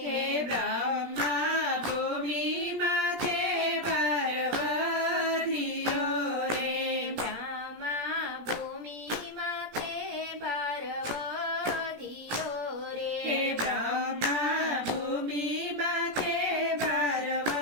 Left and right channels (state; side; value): late; left; 17 ms